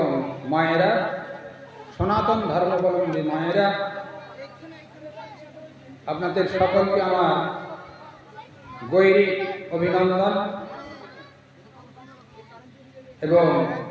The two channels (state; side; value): identical; both; correlation 1.00